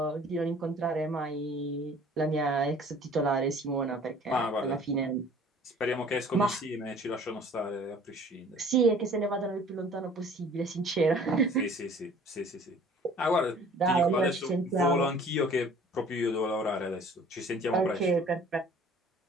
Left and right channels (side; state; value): both; normal; correlation 0.50